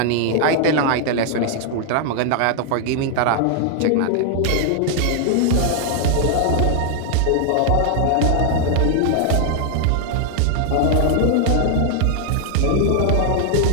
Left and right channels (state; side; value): different; both; correlation 0.00